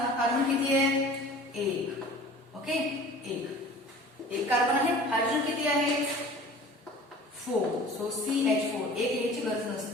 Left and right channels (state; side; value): normal; both; correlation 0.43